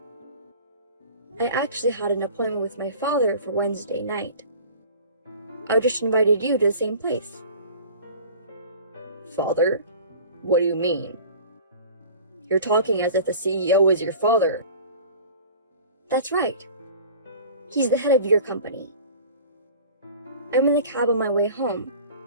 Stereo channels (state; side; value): inverted; both; correlation -0.42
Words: I actually had an appointment with my father for Wednesday night. I just invited you to the same place. Father? What do you mean? You're talking as if the CEO is your father. That's right. He's the head of your company. I'm in the cab on my way home,